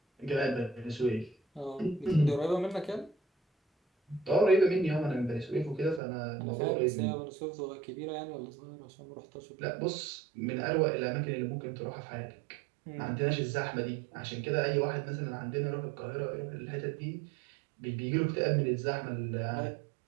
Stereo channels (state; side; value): drops out; left; at 6.0 s